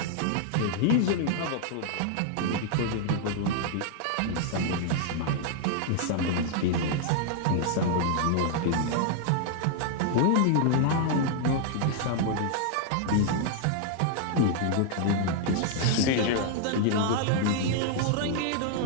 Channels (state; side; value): different; both; correlation 0.00